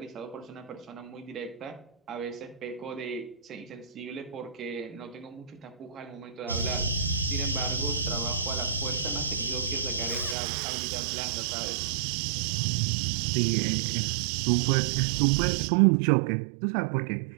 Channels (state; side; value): drops out; left; at 10.4 s